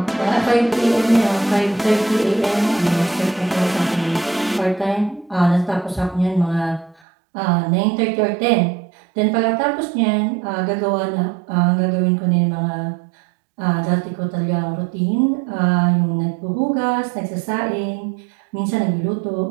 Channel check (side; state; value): left; drops out; at 7.0 s